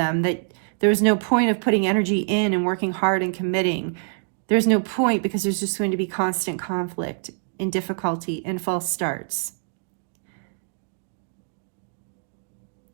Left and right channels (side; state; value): left; silent; digital silence